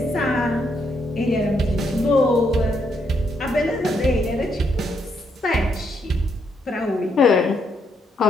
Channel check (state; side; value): normal; both; correlation 0.76